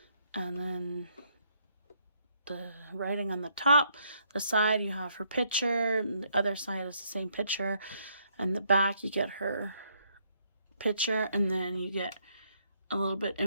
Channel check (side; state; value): both; inverted; correlation -0.71